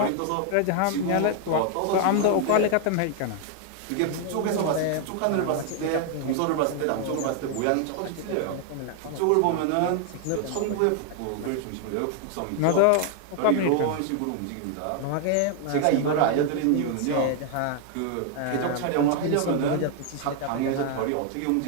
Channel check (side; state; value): both; different; correlation 0.00